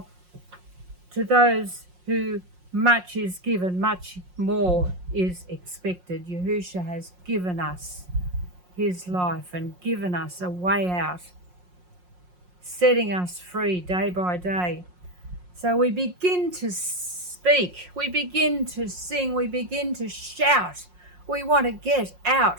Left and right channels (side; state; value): left; late; 5.6 ms